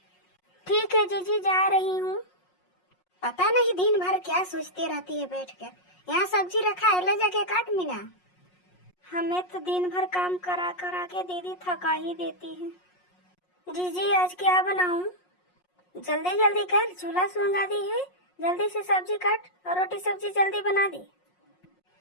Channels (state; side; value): late; right; 5.5 ms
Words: ठीक है जीजी, जा रही हूँ। पता नहीं दिन भर क्या सोचती रहती है बैठ कर। यहाँ सब्जी रखा है, ले जाके काट मीना। हमें तो दिन भर काम करा करा के दीदी थका ही देती है। जीजी आज क्या बनाऊं? जल्दी जल्दी कर, चूल्हा सुलगा दी है, जल्दी से सब्जी काट और रोटी सब्जी जल्दी बना दी।